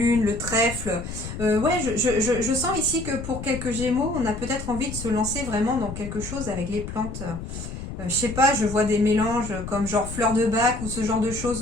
le trèfle. Ouais, je sens ici que pour quelques gémeaux, on a peut-être envie de se lancer vraiment dans quelque chose avec les plantes. Je sais pas, je vois des mélanges comme genre fleurs de bac ou ce genre de choses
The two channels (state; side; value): noise; left; rumble, 8 dB below the sound